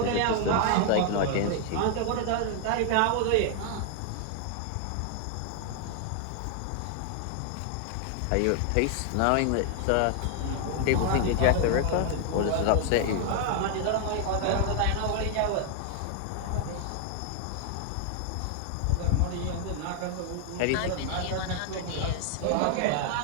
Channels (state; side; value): different; both; correlation 0.00